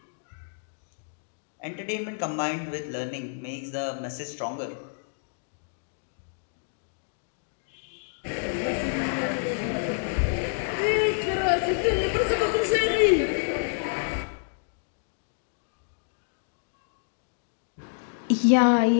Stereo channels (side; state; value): right; silent; digital silence